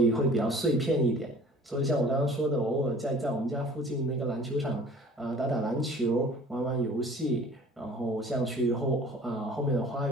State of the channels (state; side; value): normal; both; correlation 0.48